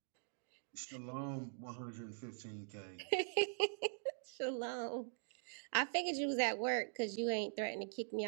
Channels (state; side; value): silent; left; digital silence